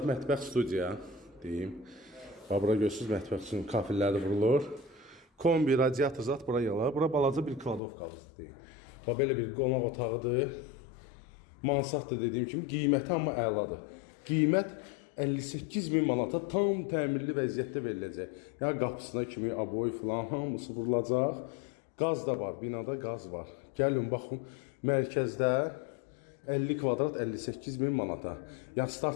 mətbəx studiya, deyim. Bax, bura görürsünüz, mətbəx üçün kafilləri vurulur. Kombi, radiator zat bura yalar. Bura balaca bir kladovkalıdır, deyim. Bax, belə bir qonaq otağıdır. Mansarddır dediyim kimi, qiyməti amma əladır. Qiymət 58.000 manata tam təmirli vəziyyətdə veriləcək. Yəni qapısına kimi aboy filan hamısı vurulacaq. Qaz da var, binada qaz var. Gəlin baxın, mərkəzdə 50 kvadrat 58.000 manata. Yəni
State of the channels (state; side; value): drops out; right; at 7.8 s